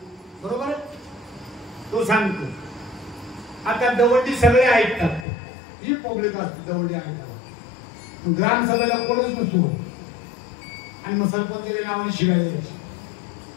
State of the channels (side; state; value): right; drops out; at 5.2 s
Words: बरोबर? तो सांगतो. आता दवंडी सगळे ऐकतात, ही पब्लिक असते दवंडी ऐकतात. ग्रामसभेला कोणच नसतो आणि मग सरपंचाच्या नावाने शिवाय द्यायची.